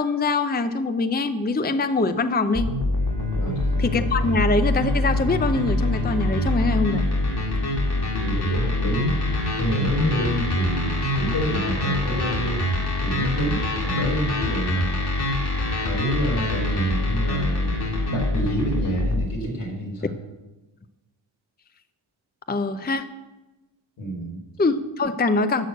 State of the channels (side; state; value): both; normal; correlation 0.49